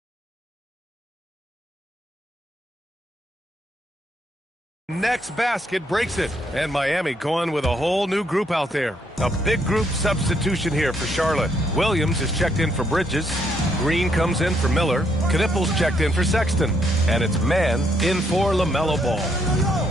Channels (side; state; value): both; normal; correlation 0.73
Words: The next basket breaks it, and Miami going with a whole new group out there. A big group substitution here for Charlotte. Williams is checked in for Bridges. Green comes in for Miller. Knippel's checked in for Sexton. And it's man in for LaMelo Ball.